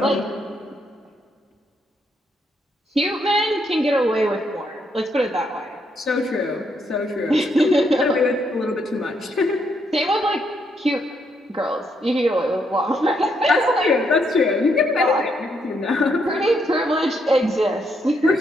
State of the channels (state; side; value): normal; both; correlation 0.75